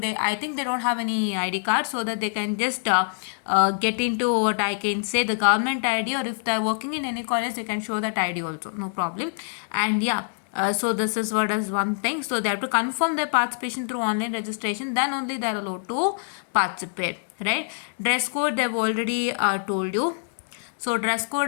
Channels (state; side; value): silent; right; digital silence